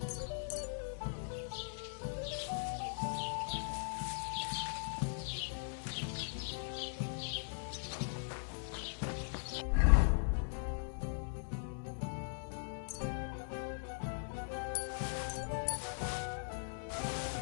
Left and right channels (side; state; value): right; silent; digital silence